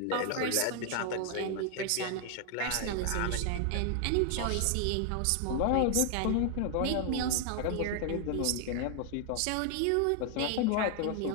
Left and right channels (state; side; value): different; both; correlation 0.00